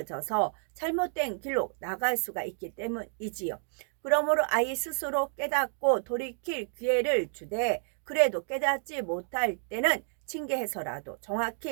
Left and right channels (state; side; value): silent; left; digital silence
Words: 잘못된 길로 나갈 수가 있기 때문이지요. 그러므로 아이 스스로 깨닫고 돌이킬 기회를 주되 그래도 깨닫지 못할 때는 징계해서라도